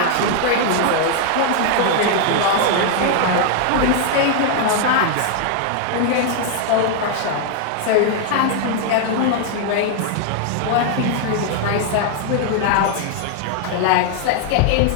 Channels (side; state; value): both; different; correlation 0.00